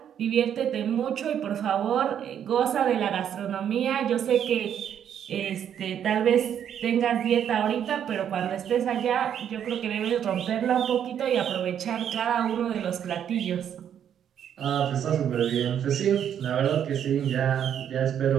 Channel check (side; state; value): left; quieter; 9.2 dB